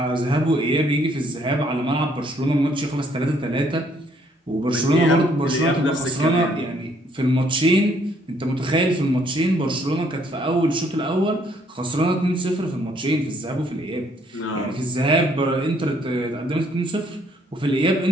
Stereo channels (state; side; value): normal; both; correlation 0.66